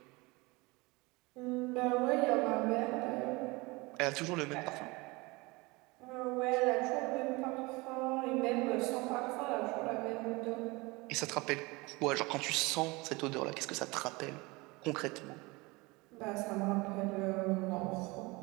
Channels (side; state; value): left; quieter; 24.5 dB